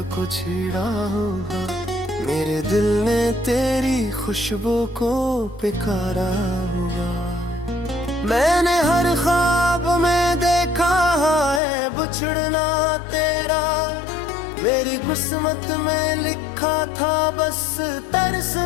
को छेड़ा होगा, मेरे दिल ने तेरी खुशबू को पुकारा होगा। मैंने हर ख्वाब में देखा है बिछड़ना तेरा, मेरी किस्मत में लिखा था बस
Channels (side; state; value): right; drops out; at 11.6 s